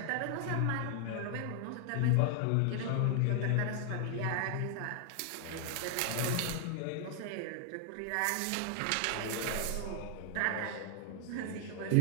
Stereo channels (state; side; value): different; both; correlation 0.00